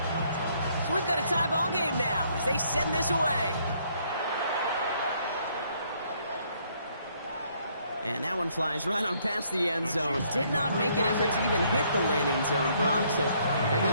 So we've got a tie ball game now as they send this away. And that one flies right on past the end zone. Did not make an effort to even hit the landing zone, Brock. So they're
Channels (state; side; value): inverted; both; correlation -0.67